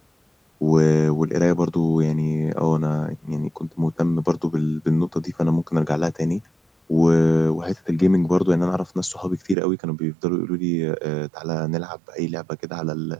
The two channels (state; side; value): drops out; left; at 9.6 s